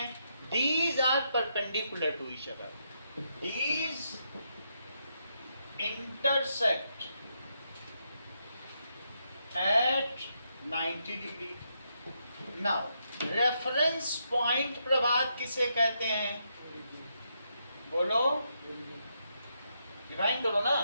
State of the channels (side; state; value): both; inverted; correlation -0.80